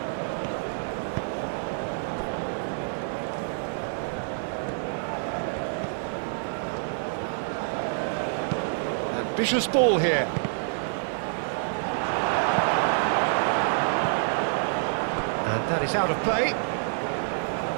Ambitious ball here. And that is out of play.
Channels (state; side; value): silent; left; digital silence